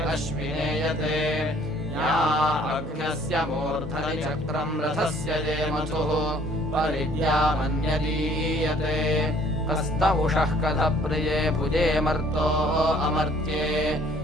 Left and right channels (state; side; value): normal; both; correlation 0.58